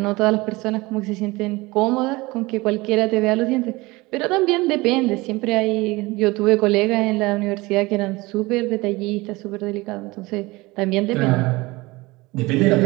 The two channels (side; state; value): left; quieter; 22.1 dB